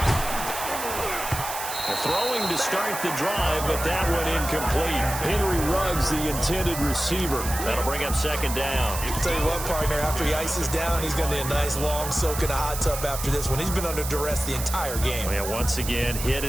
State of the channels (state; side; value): noise; right; hiss, 7 dB below the sound